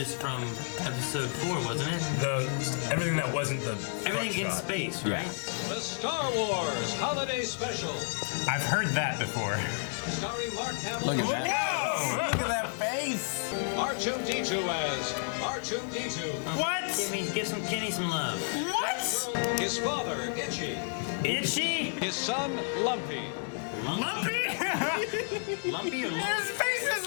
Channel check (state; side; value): silent; right; 57 dB below the other